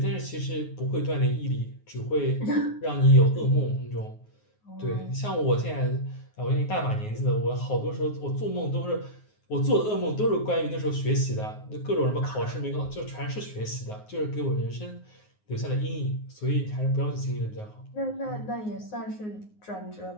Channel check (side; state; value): right; late; 9.5 ms